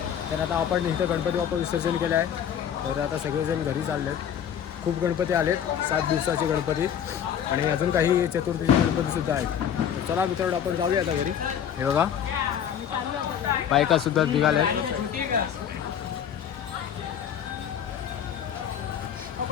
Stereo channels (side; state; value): right; quieter; 8.9 dB